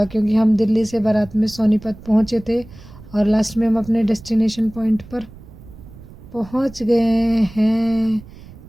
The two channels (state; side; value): noise; right; rumble, 19 dB below the sound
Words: क्योंकि हम दिल्ली से बारात में सोनीपत पहुंचे थे और लास्ट में हम अपने डेस्टिनेशन पॉइंट पर पहुंच गए हैं।